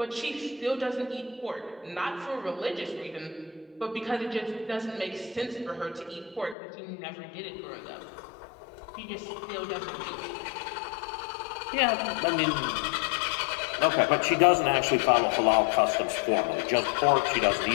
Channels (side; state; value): right; drops out; at 6.6 s